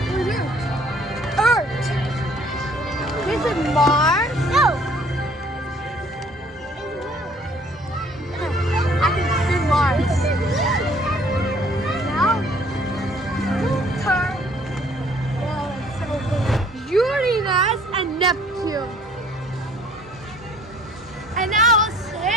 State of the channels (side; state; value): both; normal; correlation 0.57